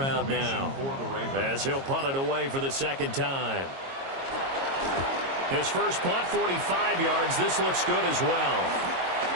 now, as he'll punt it away for the 2nd time. His first punt, 45 yards. This looks good as well.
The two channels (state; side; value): late; left; 22 ms